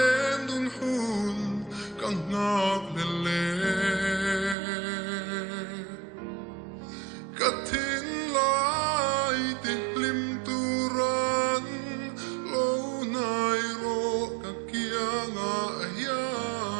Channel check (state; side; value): drops out; left; at 4.5 s